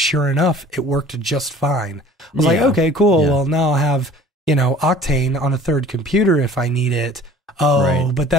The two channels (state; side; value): normal; both; correlation 0.48